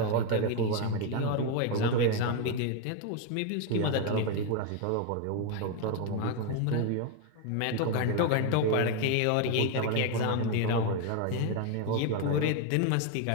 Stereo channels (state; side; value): different; both; correlation 0.01